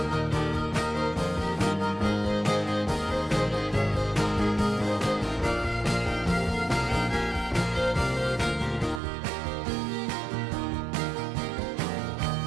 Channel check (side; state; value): left; drops out; at 9.0 s